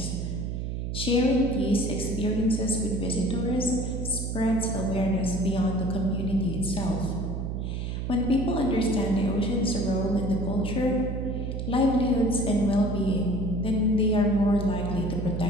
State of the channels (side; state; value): right; noise; hum, 3 dB below the sound